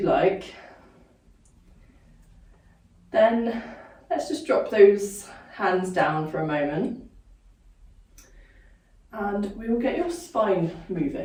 like. Then let's just drop those hands down for a moment. And we will get your spine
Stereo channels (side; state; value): both; identical; correlation 1.00